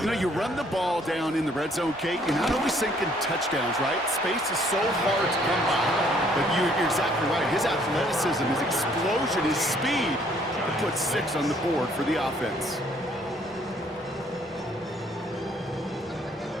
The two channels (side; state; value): both; normal; correlation 0.63